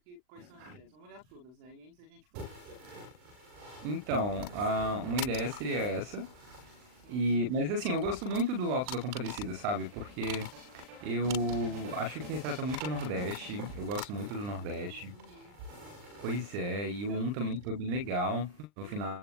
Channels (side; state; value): left; late; 39 ms